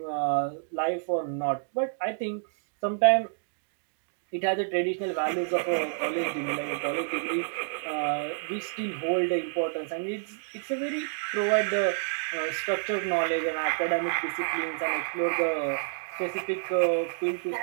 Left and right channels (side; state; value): left; silent; digital silence